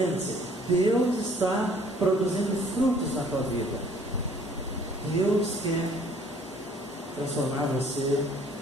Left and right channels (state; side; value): normal; both; correlation 0.57